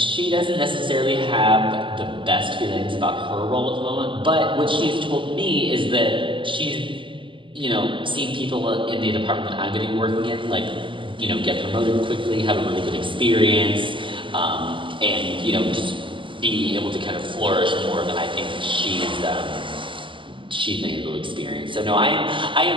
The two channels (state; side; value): late; left; 0.24 ms